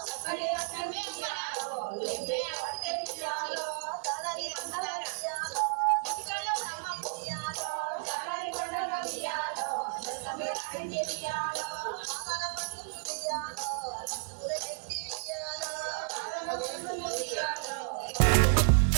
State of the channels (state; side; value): silent; left; digital silence